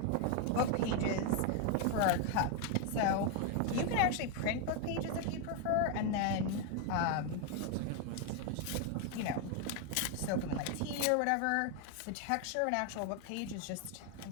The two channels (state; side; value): different; both; correlation 0.01